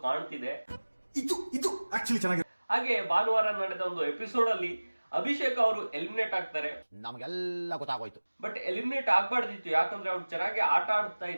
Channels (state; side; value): inverted; both; correlation -1.00